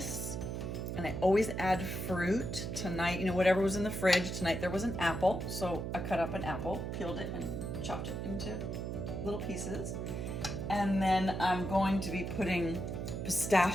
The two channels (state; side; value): noise; right; hum, 4 dB below the sound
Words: and I always add fruit. Tonight, whatever was in the fridge, tonight there was an apple, so I cut up an apple, peeled it, and chopped it into little pieces. And then I'm going to be putting